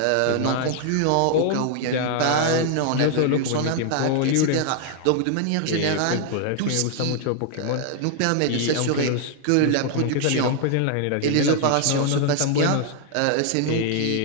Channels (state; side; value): different; both; correlation 0.00